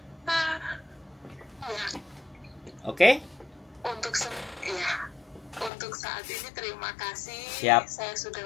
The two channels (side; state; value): right; drops out; at 5.7 s